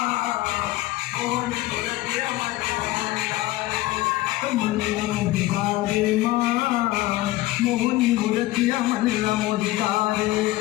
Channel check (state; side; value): quieter; right; 17.8 dB